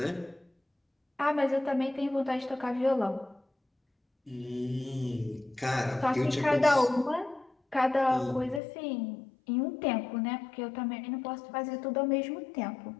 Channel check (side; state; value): right; drops out; at 8.6 s